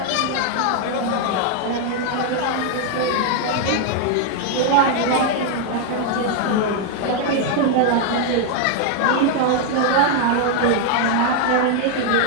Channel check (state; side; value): different; both; correlation 0.00